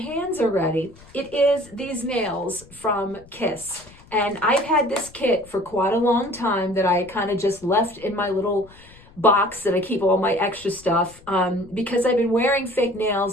already. It is these nails from Kiss. And I've had this kit for quite a long time that I kind of just left in my little box that I keep all my extra stuff because I've been wearing fake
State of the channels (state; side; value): noise; left; rumble, 24 dB below the sound